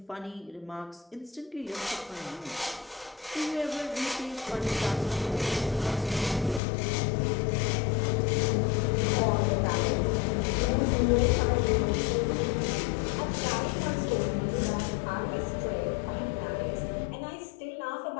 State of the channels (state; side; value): drops out; right; at 6.6 s